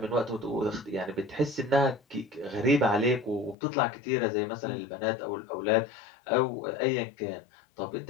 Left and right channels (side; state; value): right; drops out; at 3.6 s